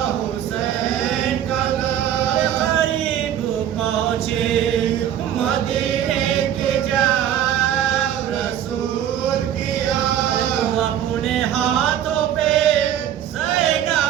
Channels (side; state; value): left; quieter; 10.5 dB